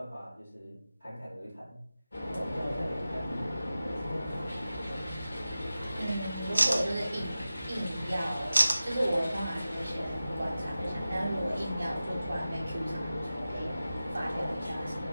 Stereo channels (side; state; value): both; inverted; correlation -0.94